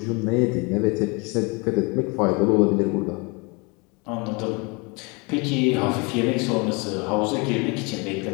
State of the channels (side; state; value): right; quieter; 29.4 dB